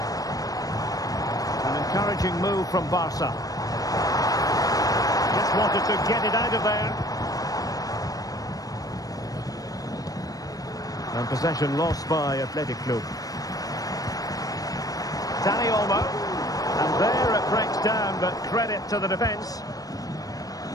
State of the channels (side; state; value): right; late; 0.18 ms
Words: An encouraging move from Barca. Just wanted to get it out of there. And possession lost by Athletic Club. Dani Olmo. And there it breaks down, but credit to the defence.